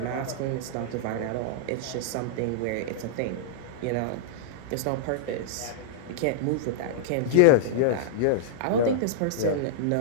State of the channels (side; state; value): both; different; correlation -0.02